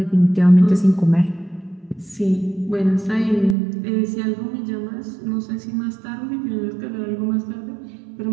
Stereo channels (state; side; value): drops out; left; at 3.6 s